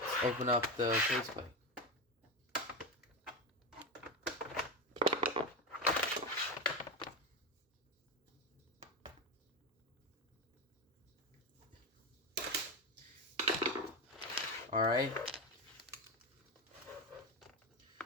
Open up the faceplate. Alright.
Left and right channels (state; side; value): normal; both; correlation 0.16